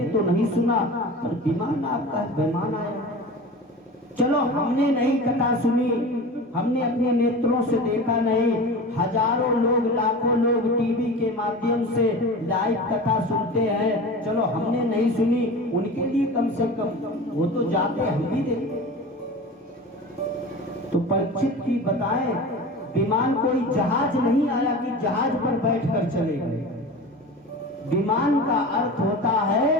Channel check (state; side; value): normal; both; correlation 0.33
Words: तो नहीं सुना, पर विमान आपका विमान आया। चलो हमने नहीं कथा सुनी, हमने अपने नेत्रों से देखा नहीं, हजारों लोग लाखों लोग टीवी के माध्यम से लाइव कथा सुनते हैं, चलो हमने नहीं सुनी, उनके लिए कम से कम वो तो जाते हम भी देखते। तो परीक्षित की बताएं, विमान कोई जहाज नहीं आया कि जहाज पर बैठकर चले गए। विमान का अर्थ होता